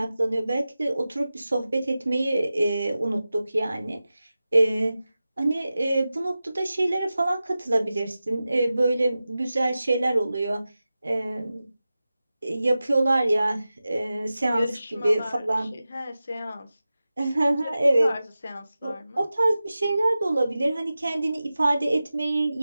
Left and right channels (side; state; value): both; inverted; correlation -0.95